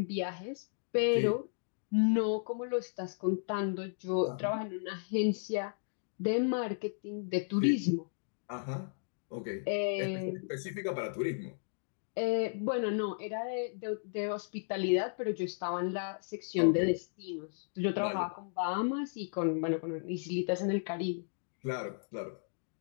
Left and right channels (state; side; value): silent; right; digital silence